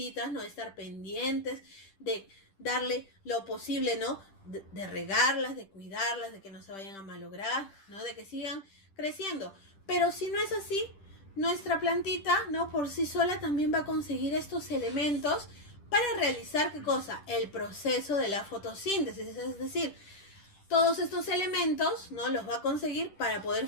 ¿no? Estar pendientes de darle lo posible, ¿no? De regarlas, de cuidarlas, de que no se vayan a malograr, ¿no? De que sigan creciendo. Pero si no es así, nuestra plantita, ¿no? Por sí sola también va a conseguir estos elementos para realizar, ¿qué cosa? El proceso de la fotosíntesis, es decir, todos estos elementos, ¿no? Los va a conseguir para poder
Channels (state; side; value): late; right; 10 ms